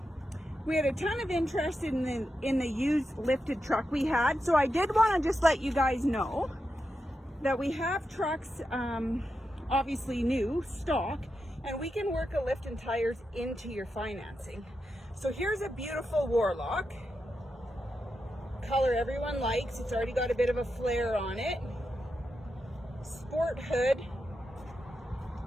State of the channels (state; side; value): normal; both; correlation 0.87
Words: We had a ton of interest in the used lifted truck we had, so I did want to just let you guys know that we have trucks, obviously new, stock, and we can work a lift and tires into your financing. So here's a beautiful Warlock. Color everyone likes. It's already got a bit of a flare on it. Sport hood.